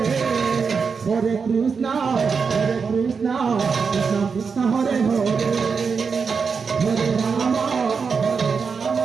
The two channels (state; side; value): quieter; left; 5.5 dB